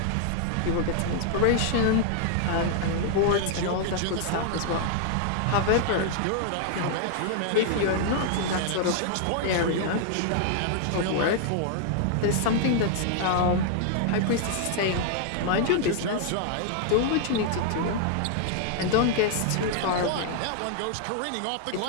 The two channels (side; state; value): both; different; correlation 0.00